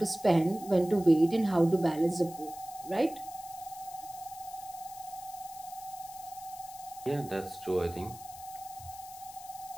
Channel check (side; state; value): left; noise; hiss, 17 dB below the sound